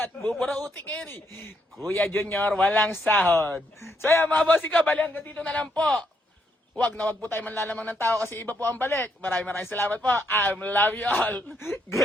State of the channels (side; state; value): both; normal; correlation 0.75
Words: buburauti kayo ni Kuya Junior, walang sahod. So yan mga boss, ikaw, bali hanggang dito na lang po. Huwag po tayo manlalamang ng tao kasi iba po ang balik. Maraming salamat po. I love you all.